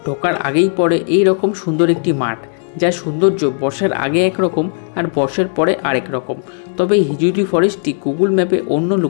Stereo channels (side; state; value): right; silent; 69 dB below the other